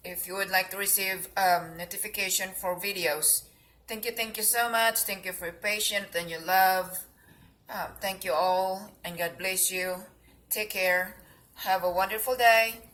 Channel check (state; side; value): identical; both; correlation 1.00